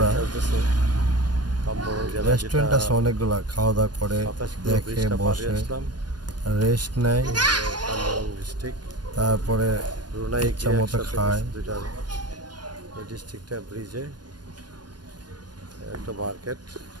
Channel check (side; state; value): left; late; 0.70 ms